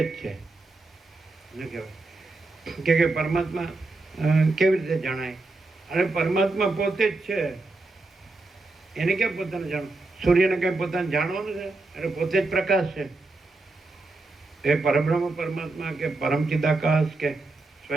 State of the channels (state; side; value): quieter; left; 3.2 dB